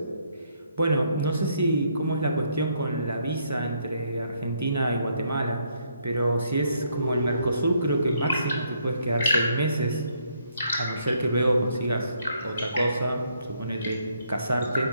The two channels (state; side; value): inverted; both; correlation -0.71